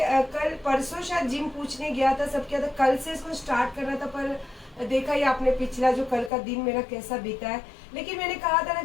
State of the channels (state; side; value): drops out; right; at 6.3 s